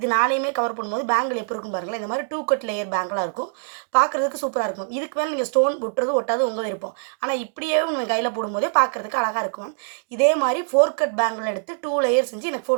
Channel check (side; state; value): left; silent; digital silence